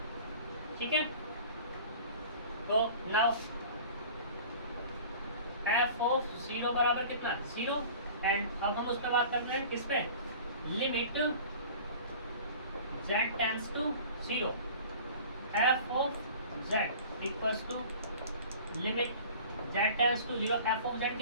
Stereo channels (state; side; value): inverted; both; correlation -0.43